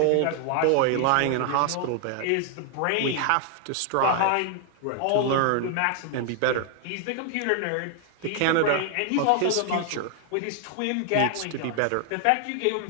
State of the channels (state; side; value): different; both; correlation 0.00